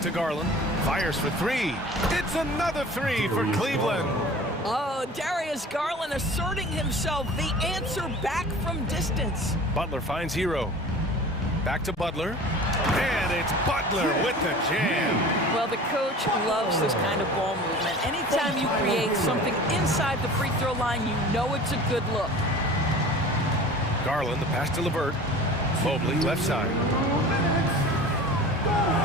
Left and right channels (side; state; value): both; normal; correlation 0.41